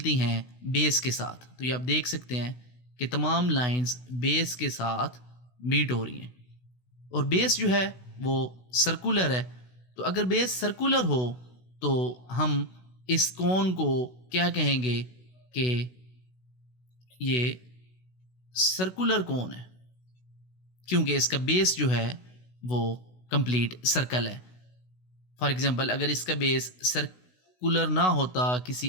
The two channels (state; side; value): late; right; 16 ms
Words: हैं बेस के साथ। तो ये आप देख सकते हैं कि तमाम लाइंस बेस के साथ मीट हो रही हैं और बेस जो है वो सर्कुलर है। तो अगर बेस सर्कुलर हो तो हम इस कोन को क्या कहेंगे कि ये सर्कुलर कोन है, क्योंकि इसका बेस जो है वो कंप्लीट सर्कल है। फॉर एग्जांपल, अगर इसका बेस सर्कुलर ना होता, किसी